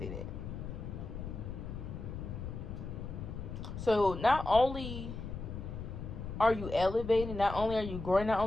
it. So not only are you elevating, not only are you growing, not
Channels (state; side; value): noise; left; rumble, 7 dB below the sound